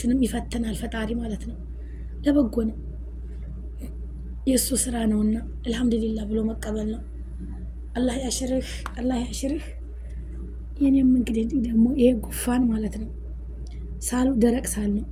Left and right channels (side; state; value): both; identical; correlation 1.00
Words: ይፈትናል ፈጣሪ ማለት ነው። ለበጎ ነው የሱ ስራ ነውና አልহামዱሊላህ ብሎ መቀበል ነው። አላህ ያሽርህ። የኔም እንግዲህ ደግሞ ይሄ ጉፋን ማለት ነው ሳሉ ደረቅ ሳል ነው።